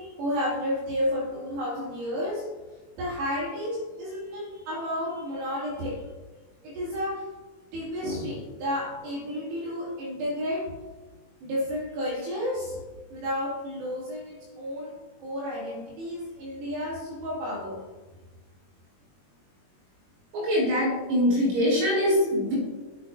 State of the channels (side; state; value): left; late; 21 ms